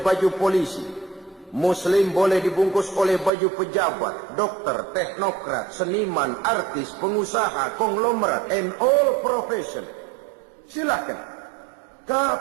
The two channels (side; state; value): left; drops out; at 3.3 s